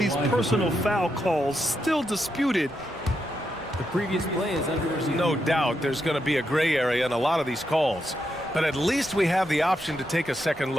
personal foul calls still disputed. The previous play is under review. No doubt there's going to be a gray area in a lot of these calls. But at least we have the option to take a second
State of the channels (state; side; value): normal; both; correlation 0.83